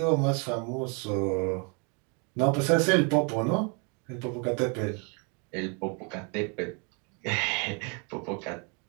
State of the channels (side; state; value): left; quieter; 35.1 dB